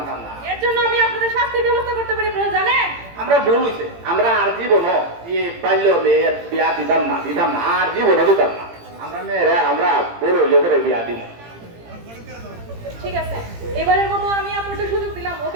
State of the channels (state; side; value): late; left; 18 ms